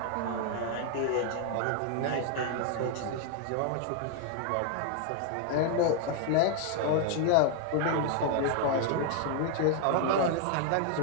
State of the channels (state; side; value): different; both; correlation 0.00